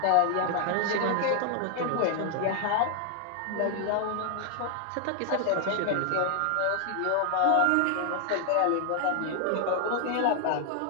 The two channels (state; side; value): different; both; correlation 0.00